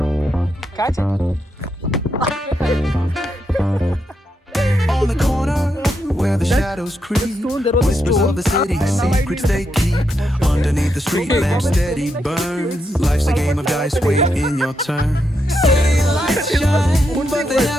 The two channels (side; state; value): both; normal; correlation 0.82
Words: Catch it. On the corner where the shadows creep, whispers of the city, secrets they keep. Underneath the street lamp steady burn. Life's a game of dice, wait in your turn. City lights shine, but they